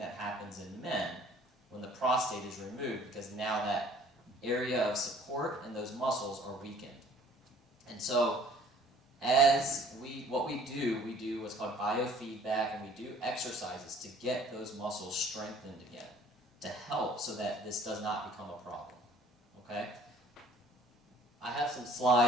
happens in men when the prostate is removed, because now that area of support and those muscles are weakened. And so what we do what's called biofeedback, and we do exercises to get those muscles strengthened again, to help so that this does not become a problem, okay? I have some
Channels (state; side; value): normal; both; correlation 0.54